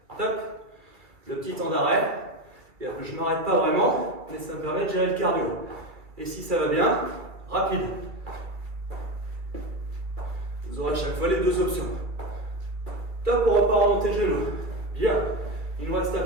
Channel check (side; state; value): left; late; 2.3 ms